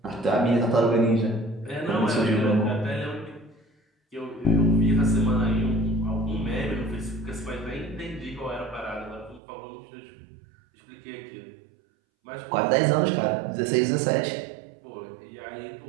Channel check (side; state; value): left; drops out; at 9.4 s